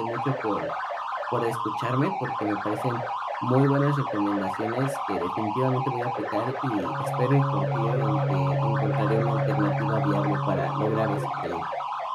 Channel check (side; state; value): both; identical; correlation 1.00